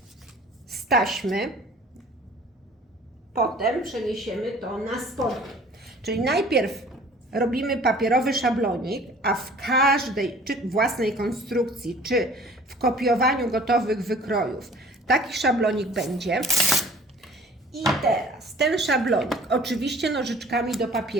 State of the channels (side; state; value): both; normal; correlation 0.50